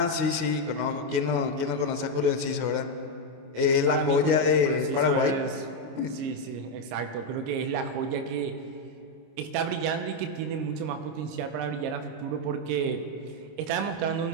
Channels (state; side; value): late; left; 26 ms